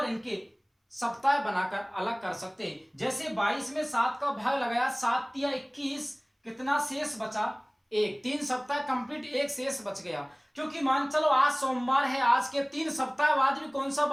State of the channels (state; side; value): identical; both; correlation 1.00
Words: इनके सप्ताह बनाकर अलग कर सकते हैं। जैसे 22 में 7 का भाग लगाया, 7 या 21, कितना शेष बचा, 1। 3 सप्ताह कंप्लीट, 1 शेष बच गया। क्योंकि मान चलो आज सोमवार है, आज के 3 सप्ताह बाद भी कौन सा